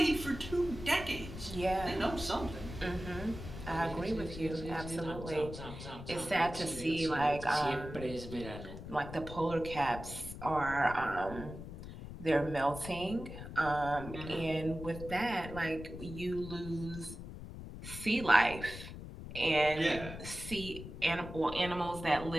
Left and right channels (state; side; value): noise; left; rumble, 10 dB below the sound